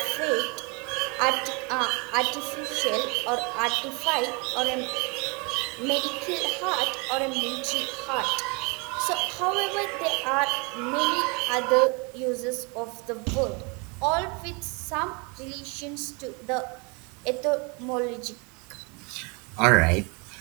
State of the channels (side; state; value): left; quieter; 31.5 dB